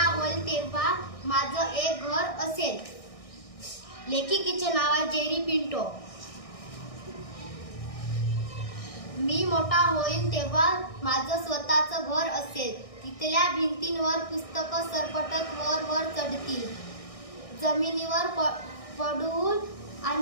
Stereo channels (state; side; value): late; right; 1.6 ms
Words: होईल तेव्हा माझं एक घर असेल. लेखिकेचे नाव आहे जेरी पिंटो. मी मोठा होईन तेव्हा माझं स्वतःचं घर असेल. तिथल्या भिंतींवर पुस्तकं सरपटत वर वर चढतील. जमिनीवर पडून